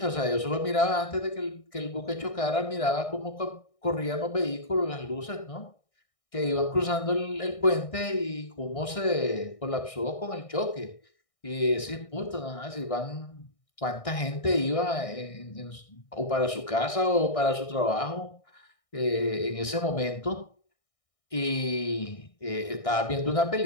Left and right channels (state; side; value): late; right; 1.6 ms